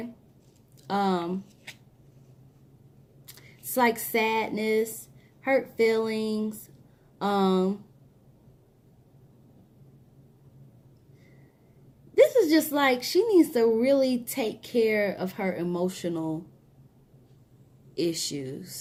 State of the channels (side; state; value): both; identical; correlation 1.00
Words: It's like sadness, hurt feelings, this is just like she needs to really take care of her emotional